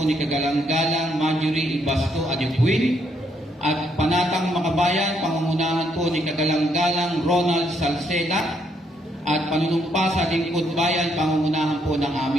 Kagalang-galang Marjorie Ibasto Adipuin at Panatang Makabayan, pangungunahan po ni Kagalang-galang Ronald Salceda at panunumpa sa Lingkod Bayan, pangungunahan po ng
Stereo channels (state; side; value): normal; both; correlation 0.73